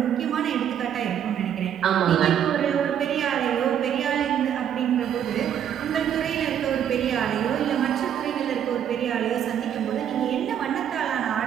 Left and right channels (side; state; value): left; quieter; 9.4 dB